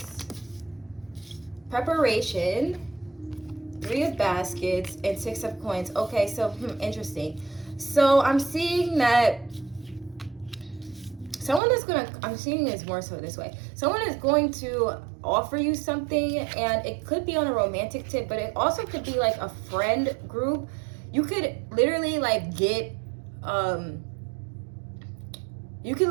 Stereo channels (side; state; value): left; drops out; at 11.6 s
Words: Preparation, 3 of baskets, and 6 of coins. Okay, so interesting. So I'm seeing that someone is I'm seeing this more so this way. Someone is going to offer you something, and it could be on a romantic tip, but it also could be like a friend group. You could literally like get, you